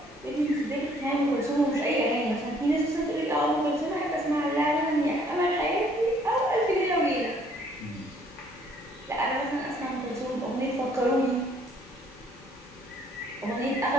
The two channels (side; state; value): both; normal; correlation 0.62